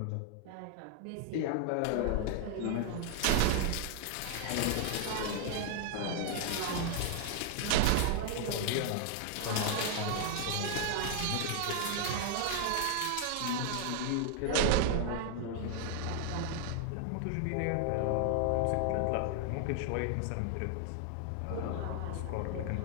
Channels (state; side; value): different; both; correlation 0.00